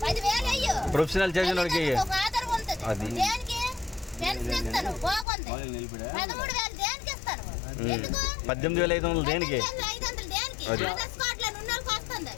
10,000 అయ్యో, ప్రొఫెషనల్ చదివినోడికి ఆధారం ఉంటుంది. దేనికి పెన్షన్ ఇస్తాను బాగుంది, 13,000 దేనికి ఇస్తాను? ఎందుకు 18,500 దేనికి? 500 దేనికి? ఆధార్ స్పాట్ లో ఉన్నోళ్ళకి వస్తుంది.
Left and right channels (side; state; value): right; drops out; at 5.2 s